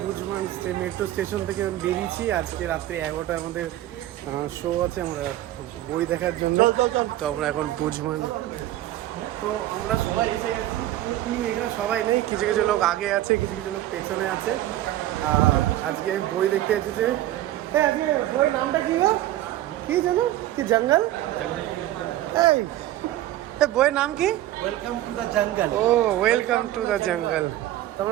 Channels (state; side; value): quieter; left; 14.2 dB